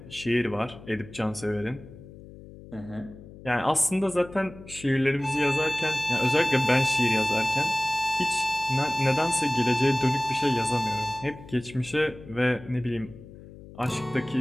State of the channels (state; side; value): noise; left; hum, 18 dB below the sound